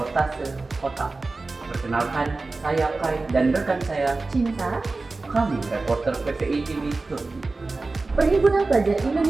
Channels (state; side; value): quieter; left; 3.5 dB